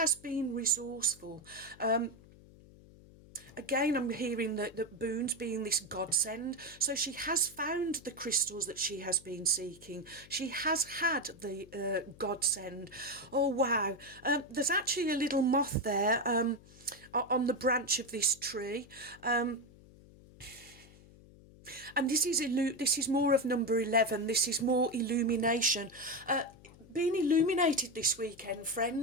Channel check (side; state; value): left; noise; hum, 22 dB below the sound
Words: been resourceful, again, I'm hearing that boons being this godsend. So she has found the crystals that she has been seeking. She has had the godsend. Oh, wow. There's actually a little moth there on the branch of this tree. And this is more of number 11. This is more illumination. Being illuminated this weekend,